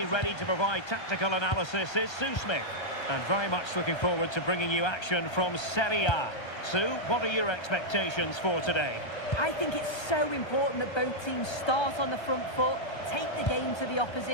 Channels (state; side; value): late; right; 1.3 ms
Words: ready to provide tactical analysis is Sue Smith. And very much looking forward to bringing you action from Serie A. Sue, what are your expectations for today? I think it's so important that both teams start on the front foot, take the game to the